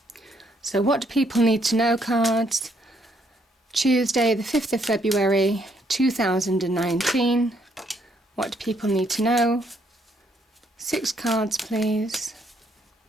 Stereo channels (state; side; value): normal; both; correlation 0.71